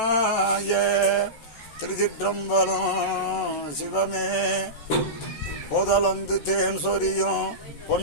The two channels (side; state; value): right; late; 14 ms